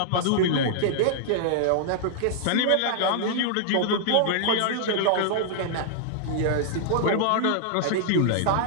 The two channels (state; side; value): different; both; correlation -0.01